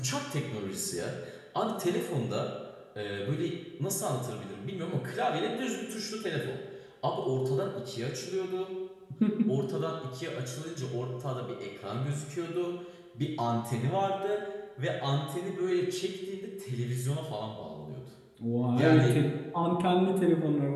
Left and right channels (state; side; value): identical; both; correlation 1.00